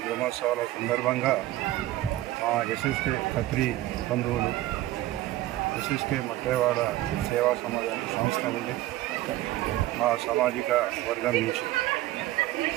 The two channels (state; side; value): quieter; left; 15.6 dB